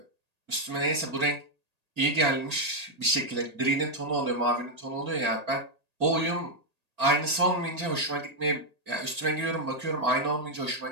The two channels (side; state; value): left; late; 1.8 ms